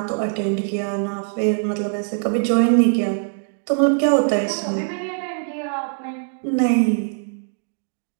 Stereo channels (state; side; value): silent; left; digital silence